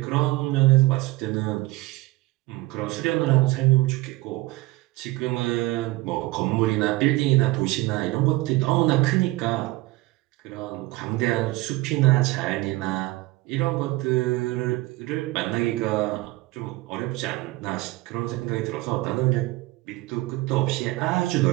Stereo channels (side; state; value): left; quieter; 19.9 dB